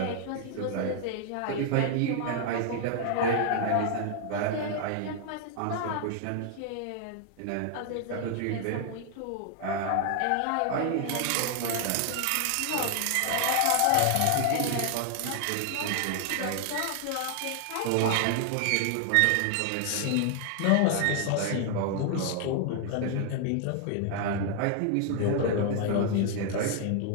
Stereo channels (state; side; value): different; both; correlation 0.00